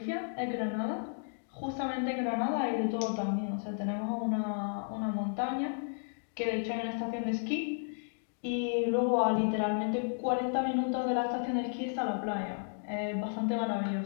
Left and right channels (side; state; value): right; silent; digital silence